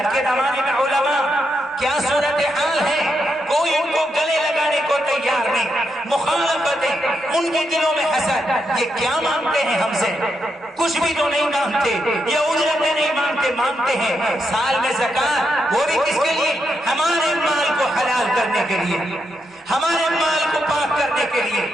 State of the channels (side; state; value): both; normal; correlation 0.82